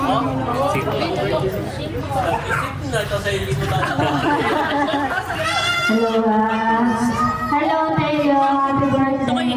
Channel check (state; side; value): identical; both; correlation 1.00